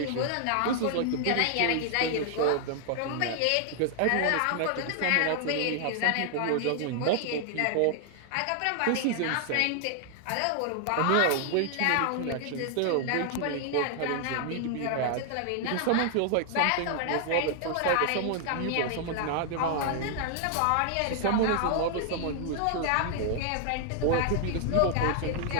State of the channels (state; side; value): different; both; correlation 0.00